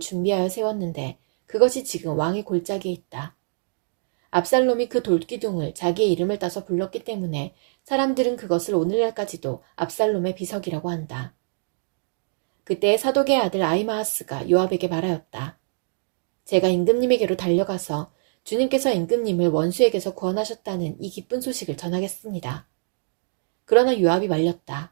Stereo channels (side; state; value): left; silent; digital silence